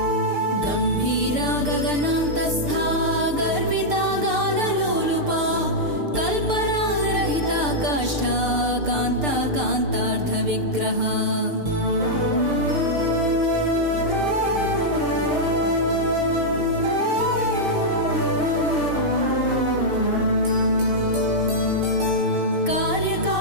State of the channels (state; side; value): late; left; 6.7 ms